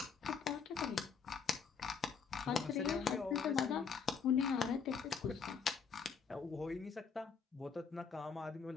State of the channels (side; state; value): right; quieter; 6.1 dB